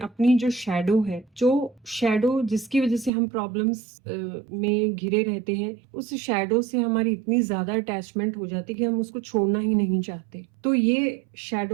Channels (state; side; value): drops out; left; at 3.1 s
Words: अपनी जो शैडो जिसकी वजह से हम प्रॉब्लम्स में घिरे रहते हैं, उस शैडो से हमारी इतनी ज्यादा अटैचमेंट हो जाती है कि हम उसको छोड़ना ही नहीं चाहते। तो ये